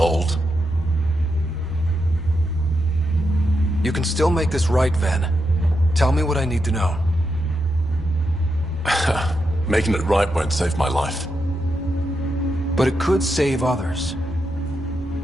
You can still make this right, Ven. Tell me what I need to know. Making it right won't save my life. But it could save others.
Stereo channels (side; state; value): both; normal; correlation 0.84